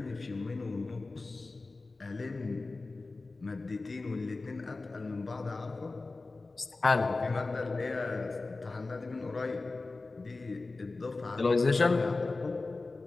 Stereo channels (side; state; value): right; quieter; 3.5 dB